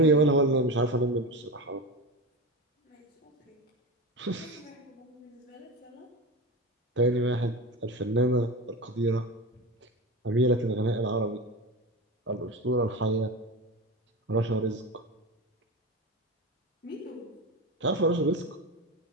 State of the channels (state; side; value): normal; both; correlation 0.24